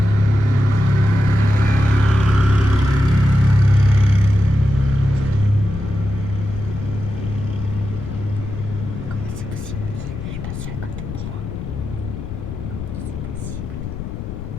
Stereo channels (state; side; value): noise; left; rumble, 8 dB below the sound